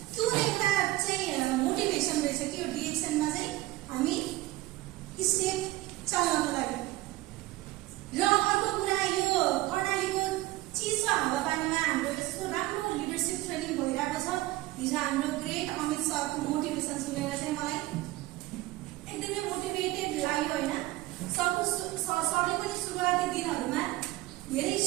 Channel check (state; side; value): quieter; left; 18.0 dB